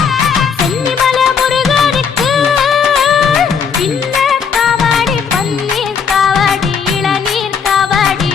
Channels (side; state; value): right; quieter; 6.6 dB